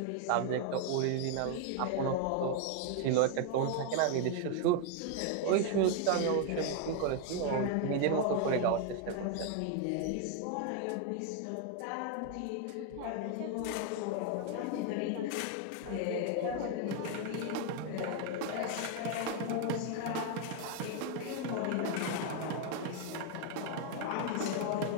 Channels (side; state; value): both; different; correlation 0.01